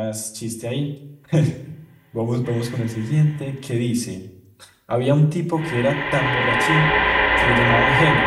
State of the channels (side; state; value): both; identical; correlation 1.00